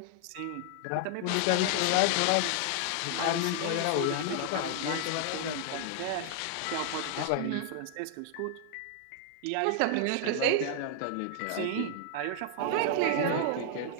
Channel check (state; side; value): different; both; correlation 0.00